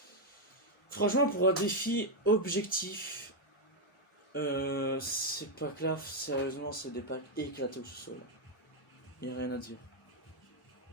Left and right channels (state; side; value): normal; both; correlation 0.02